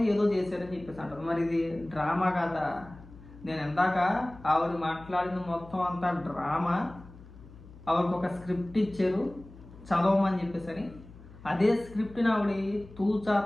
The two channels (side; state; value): left; noise; hum, 19 dB below the sound